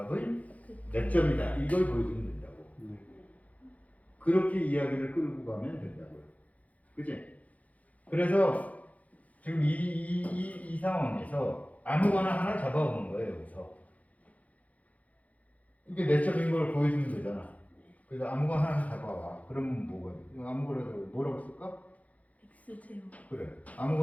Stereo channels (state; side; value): late; right; 0.070 ms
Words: 몇 점이다 이걸 보여주면 된다고. 네. 그렇게 이야기를 끌고 가면 된다고요. 그치? 그래서 지금 이 상황에서 아무거나 하나 잡아오는 거예요. 여기서 이게 내적인 걸 보여주면 되잖아. 그래서 아무거나 하나 잡아와. 그러면 뭐거든? 아무거나 뭐라고 쓸까? X0 그래.